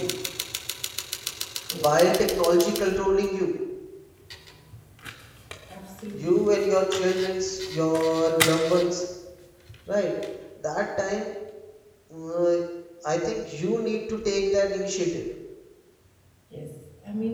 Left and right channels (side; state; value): both; identical; correlation 1.00